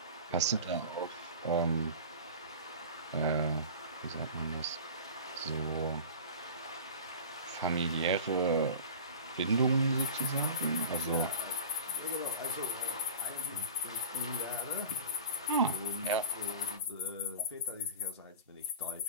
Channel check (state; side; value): inverted; both; correlation -0.35